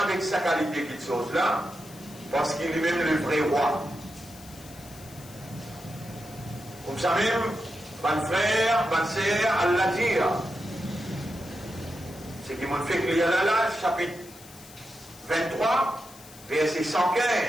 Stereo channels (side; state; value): left; noise; hiss, 20 dB below the sound